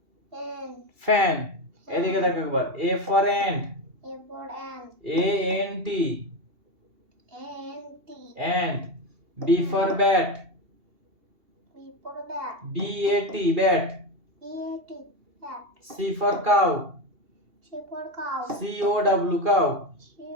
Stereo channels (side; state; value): left; late; 2.8 ms